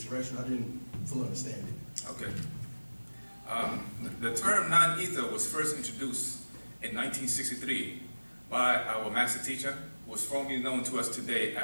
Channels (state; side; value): inverted; both; correlation -1.00